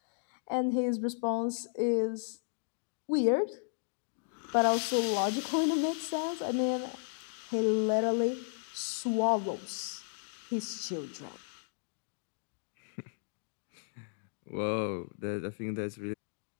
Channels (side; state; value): right; silent; digital silence